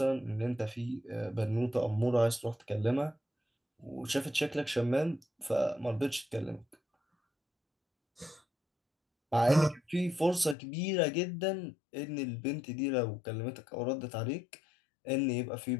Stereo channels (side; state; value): right; drops out; at 10.6 s